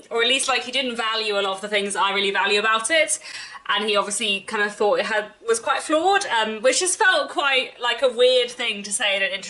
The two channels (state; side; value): identical; both; correlation 1.00